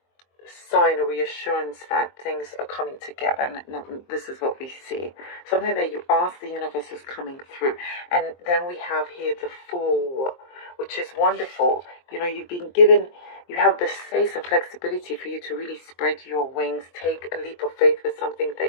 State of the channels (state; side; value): late; right; 23 ms